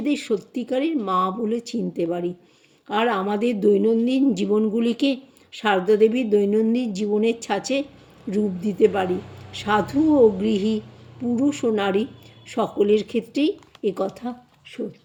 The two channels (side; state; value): both; identical; correlation 1.00